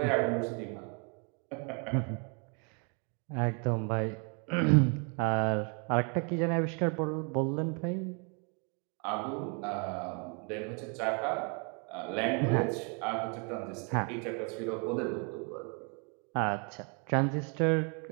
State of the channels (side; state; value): left; quieter; 36.4 dB